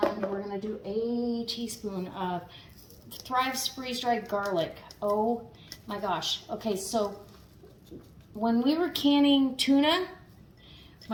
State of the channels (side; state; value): both; identical; correlation 1.00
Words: we're gonna do a teaspoon of Thrive's freeze-dried garlic. Oh my gosh. Okay, so when we were canning tuna,